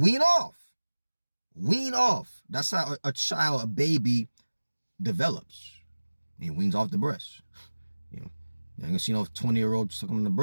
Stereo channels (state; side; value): inverted; both; correlation -1.00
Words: off. That's how a baby develops. He weans off the breast. You know, you ain't gonna see no 20-year-old sucking on the